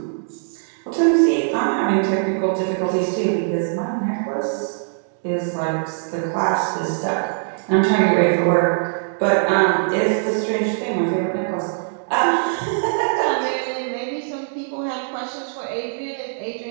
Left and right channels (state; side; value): silent; left; digital silence